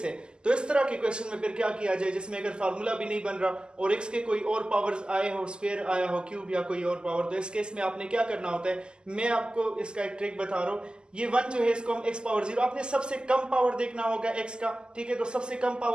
है। तो इस तरह के क्वेश्चन में फिर क्या किया जाए जिसमें अगर फार्मूला भी नहीं बन रहा और x के कोई और पावर्स आए हो, स्क्वायर आया हो, क्यूब या कोई और पावर, तो इस केस में आपने क्या करना होता है, मैं आपको इसका एक ट्रिक बता रहा हूँ। ये 1 जो है इसको हम x पावर 0, आपने सबसे कम पावर देखना होगा x का, ठीक है। तो सबसे कम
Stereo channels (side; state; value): left; late; 0.048 ms